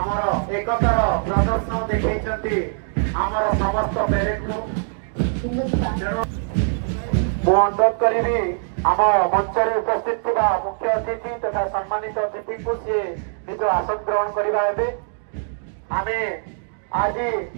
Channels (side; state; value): left; silent; digital silence